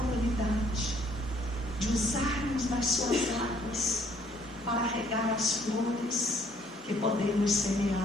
de usarmos das suas águas para regar as flores que podemos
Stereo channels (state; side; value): normal; both; correlation 0.63